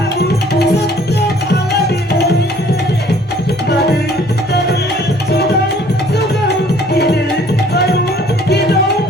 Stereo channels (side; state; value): both; normal; correlation 0.57